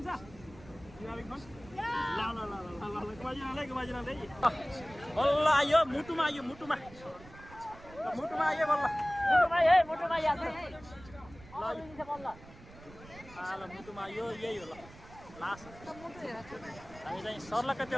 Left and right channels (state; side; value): noise; right; rumble, 19 dB below the sound